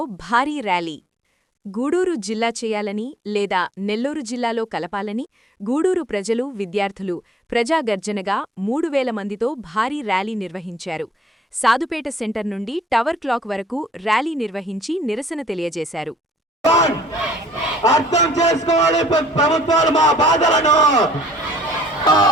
భారీ ర్యాలీ. గూడూరు జిల్లా చేయాలని లేదా నెల్లూరు జిల్లాలో కలపాలని గూడూరు ప్రజలు, విద్యార్థులు ప్రజాగర్జనగా 3000 మందితో భారీ ర్యాలీ నిర్వహించారు. సాదుపేట సెంటర్ నుండి టవర్ క్లాక్ వరకు ర్యాలీ నిర్వహించి నిరసన తెలియజేశారు. అర్థం చేసుకోవాలి ప్రభుత్వాలు మా బాధలను,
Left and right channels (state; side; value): normal; both; correlation 0.60